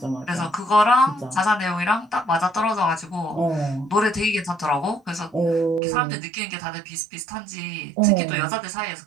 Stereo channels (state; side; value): drops out; left; at 5.8 s